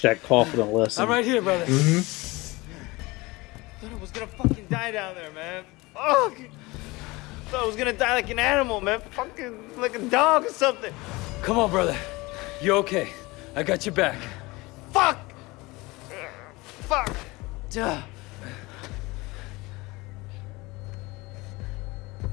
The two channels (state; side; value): quieter; right; 22.7 dB